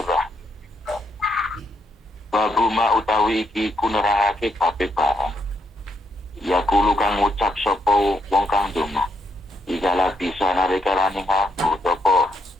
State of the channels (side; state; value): both; normal; correlation 0.76